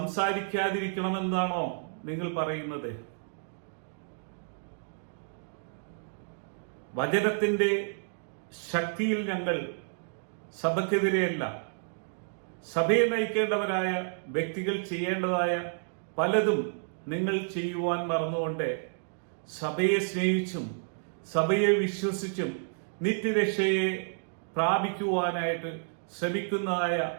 നിങ്ങൾ പറയുന്നത്? വചനത്തിന്റെ ശക്തിയിൽ ഞങ്ങൾ സഭയ്ക്കെതിരെയല്ല. സഭയെ നയിക്കേണ്ടവരായ വ്യക്തികൾ ചെയ്യേണ്ടതായ പലതും നിങ്ങൾ ചെയ്യുവാൻ മറന്നുകൊണ്ട് സഭയെ സ്നേഹിച്ചും സഭയെ വിശ്വസിച്ചും നിത്യരക്ഷയെ പ്രാപിക്കുവാനായിട്ട് ശ്രമിക്കുന്നതായ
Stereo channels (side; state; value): left; silent; digital silence